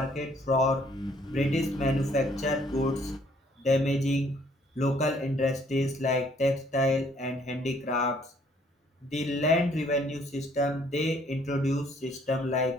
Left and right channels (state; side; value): normal; both; correlation 0.63